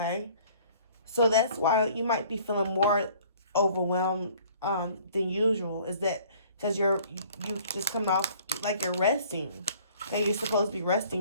so that's why you might be feeling more overwhelmed than usual. Is that because you just coming off, like you're resting? Okay, you're supposed to be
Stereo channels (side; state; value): both; inverted; correlation -0.54